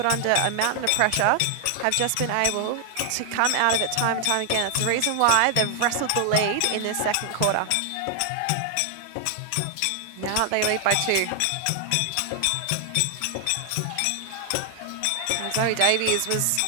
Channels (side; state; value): both; different; correlation 0.00